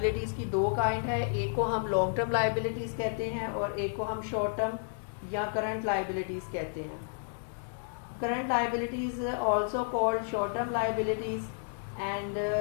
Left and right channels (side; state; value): right; silent; digital silence